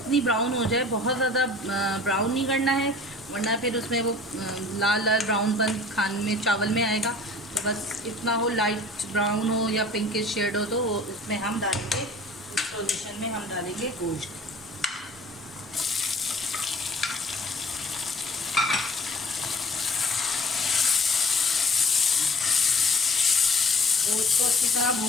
ब्राउन हो जाए, बहुत ज़्यादा ब्राउन नहीं करना है, वरना फिर उसमें वो लाल ब्राउनपन खाने में चावल में आएगा। तो बस इतना हो, लाइट ब्राउन हो या पिंकिश शेड हो, तो इसमें हम डालेंगे, इस सॉल्यूशन में हम डालेंगे गोश्त। गोश्त को अच्छी तरह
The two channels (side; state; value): both; normal; correlation 0.49